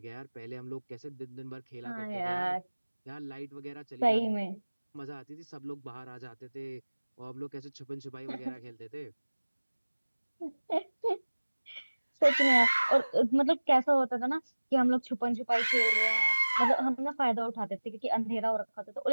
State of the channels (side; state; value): both; inverted; correlation -1.00